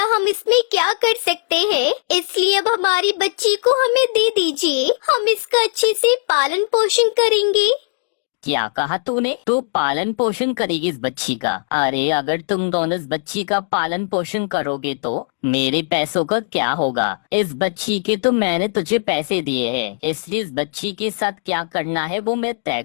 हम इसमें क्या कर सकते हैं? इसलिए अब हमारी बच्ची को हमें दे दीजिए। हम इसका अच्छे से पालन पोषण करेंगे। क्या कहा तूने? तू पालन पोषण करेगी इस बच्ची का? अरे अगर तुम दोनों इस बच्ची का पालन पोषण करोगे तो मेरे पैसों का क्या होगा? इस बच्ची के तो मैंने तुझे पैसे दिए हैं, इसलिए इस बच्ची के साथ क्या करना है वो मैं तय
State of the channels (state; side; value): silent; right; digital silence